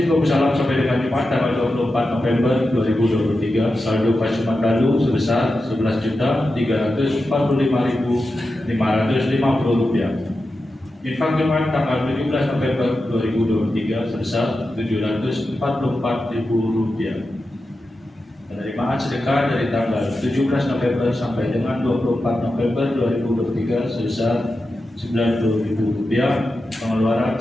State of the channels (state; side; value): normal; both; correlation 0.91